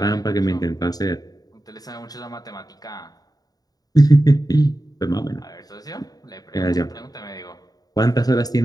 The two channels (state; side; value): late; right; 0.18 ms